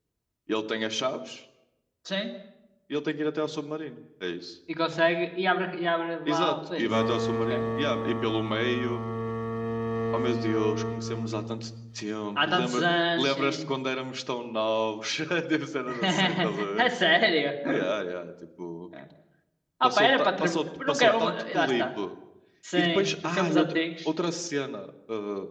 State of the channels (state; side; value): identical; both; correlation 1.00